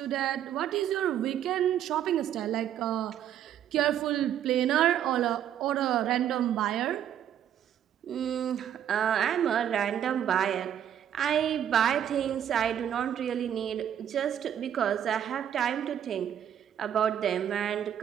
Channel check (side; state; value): left; quieter; 10.1 dB